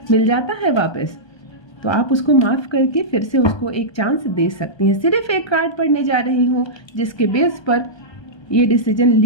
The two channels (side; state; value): right; late; 1.3 ms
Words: मिल जाता है वापस, तो आप उसको माफ़ करके फिर से उसको एक चांस दे सकती हैं। सिर्फ एक कार्ड पढ़ने जा रही हूँ जिसके बेस पर ये डिसीजन